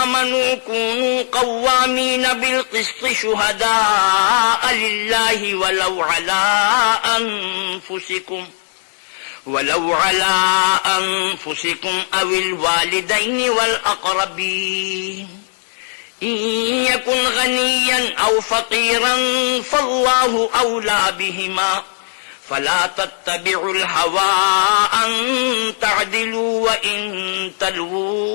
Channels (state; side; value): silent; right; 67 dB below the other